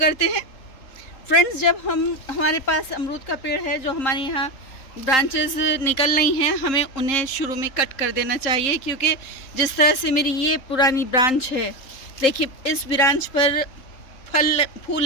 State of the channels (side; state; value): right; late; 3.8 ms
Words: हैं। फ्रेंड्स, जब हमारे पास अमरूद का पेड़ है, जो हमारे यहाँ ब्रांचेस निकल रही हैं, हमें उन्हें शुरू में कट कर देना चाहिए, क्योंकि जिस तरह से मेरी ये पुरानी ब्रांच है, देखिए इस ब्रांच पर